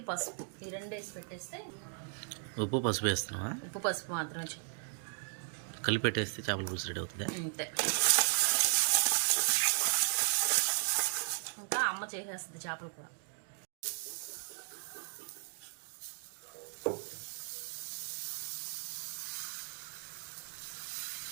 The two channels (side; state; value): left; silent; digital silence